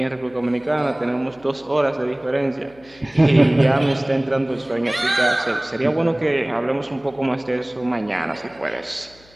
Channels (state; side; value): noise; left; hum, 27 dB below the sound